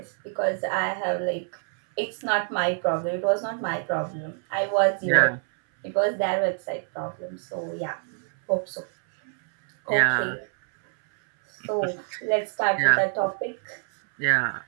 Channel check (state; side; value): silent; left; 61 dB below the other